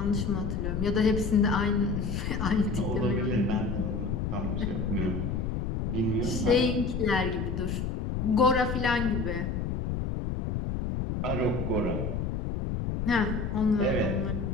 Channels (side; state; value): left; noise; rumble, 2 dB below the sound